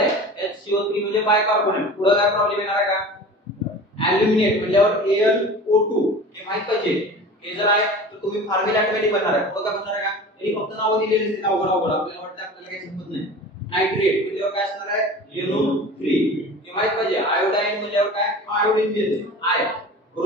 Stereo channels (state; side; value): normal; both; correlation 0.38